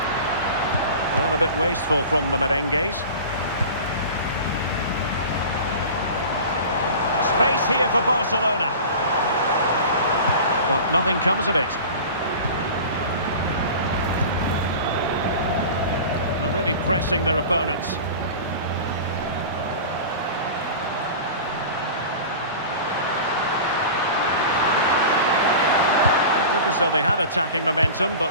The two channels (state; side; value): inverted; both; correlation -0.36